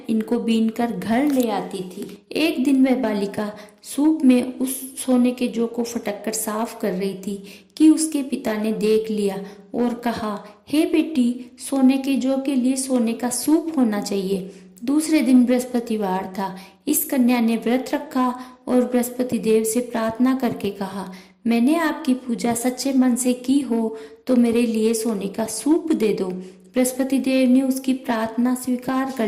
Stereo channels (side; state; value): both; identical; correlation 1.00